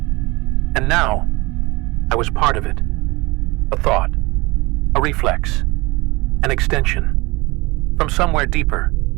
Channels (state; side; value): quieter; left; 23.1 dB